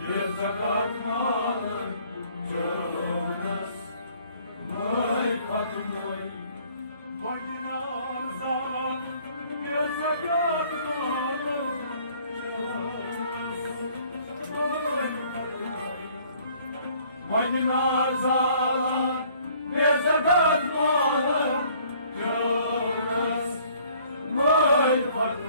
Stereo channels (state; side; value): inverted; both; correlation -0.58